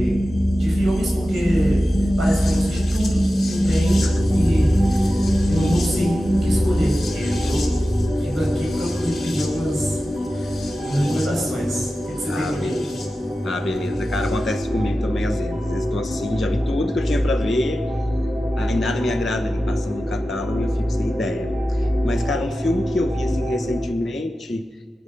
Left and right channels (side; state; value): both; normal; correlation 0.94